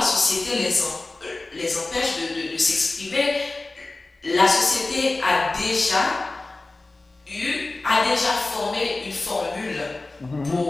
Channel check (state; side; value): quieter; right; 3.2 dB